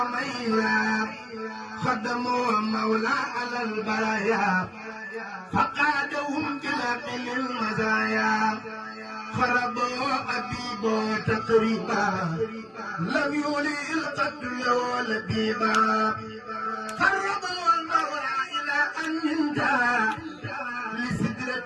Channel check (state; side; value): identical; both; correlation 1.00